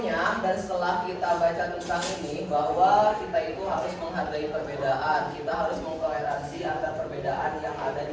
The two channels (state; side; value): identical; both; correlation 1.00